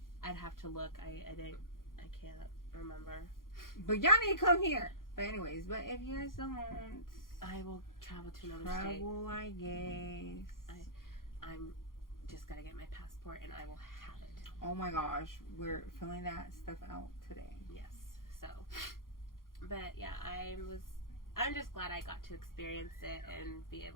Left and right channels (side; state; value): right; late; 0.91 ms